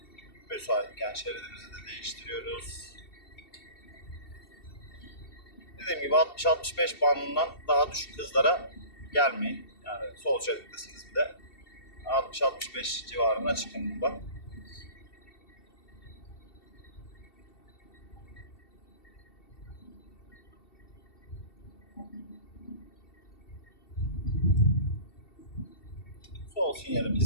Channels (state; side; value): late; right; 2.7 ms